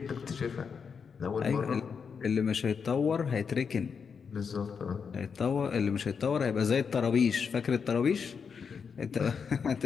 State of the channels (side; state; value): right; quieter; 6.1 dB